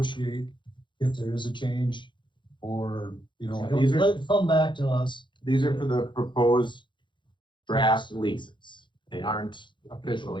if there is a change, or, These are- let it come back to us. These are for the proposed draft leases. They aren't official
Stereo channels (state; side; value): late; right; 0.23 ms